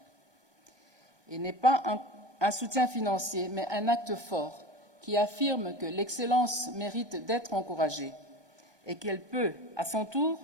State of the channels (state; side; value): late; left; 1.2 ms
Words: Et n'est pas un soutien financier, mais un acte fort qui affirme que l'excellence mérite d'être encouragée et qu'elle peut, à son tour,